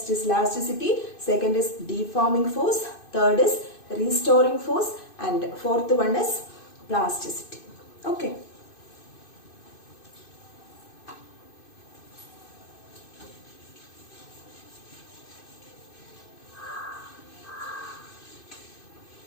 is elasticity. Second is deforming force. Third is restoring force. And fourth one is plasticity. Okay.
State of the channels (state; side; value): late; right; 2.5 ms